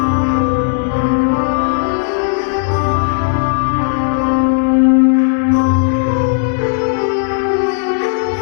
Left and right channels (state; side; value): silent; right; digital silence